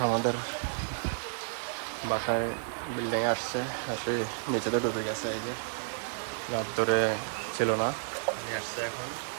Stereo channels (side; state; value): left; silent; 57 dB below the other